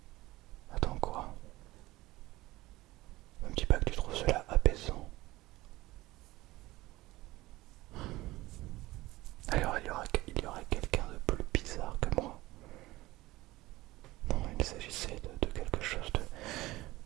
Attends, quoi? Ne me dis pas que tu trouves cela apaisant. Alors il y aurait quelqu'un de plus bizarre que moi. Non, il s'agissait de quelque chose de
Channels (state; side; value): quieter; left; 18.6 dB